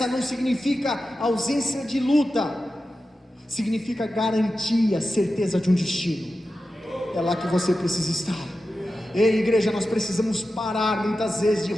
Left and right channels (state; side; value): normal; both; correlation 0.92